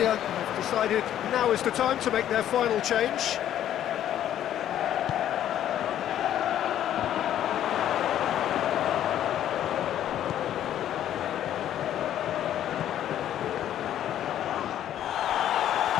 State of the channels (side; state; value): right; quieter; 11.2 dB